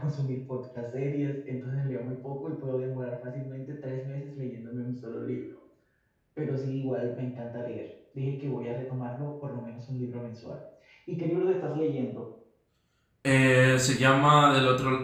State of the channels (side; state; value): both; identical; correlation 1.00